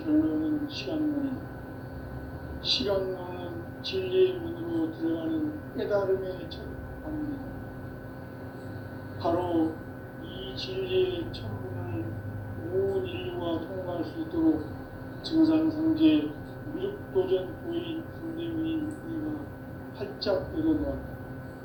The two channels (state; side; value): identical; both; correlation 1.00